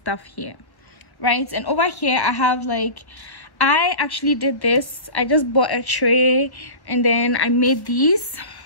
here, right? And over here I have like, I actually did this. I just bought a tray and then I made these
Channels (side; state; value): right; late; 1.1 ms